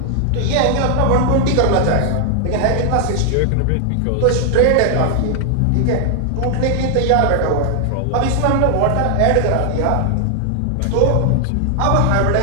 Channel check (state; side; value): different; both; correlation 0.00